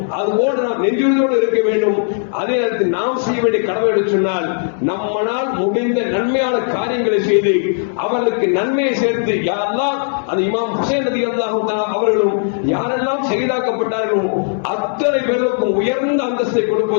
அதுபோன்று நாம் நெஞ்சுறுதியோடு இருக்க வேண்டும். அதே நேரத்தில் நாம் செய்ய வேண்டிய கடமை என்று சொன்னால் நம்மால் முடிந்த நன்மையான காரியங்களை செய்து அவர்களுக்கு நன்மையை சேர்த்து, யாரெல்லாம் அந்த இமாம் ஹுசைன் ரலியல்லாஹு அன்ஹு அவர்களும் யாரெல்லாம் ஷஹீதாக்கப்பட்டார்களோ அத்தனை பேருக்கும் உயர்ந்த அந்தஸ்தை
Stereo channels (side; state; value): right; silent; 64 dB below the other